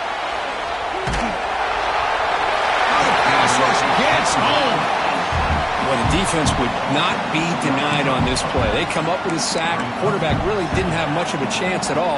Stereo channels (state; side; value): identical; both; correlation 1.00